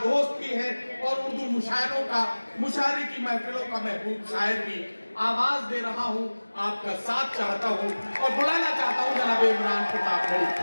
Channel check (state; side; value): inverted; both; correlation -1.00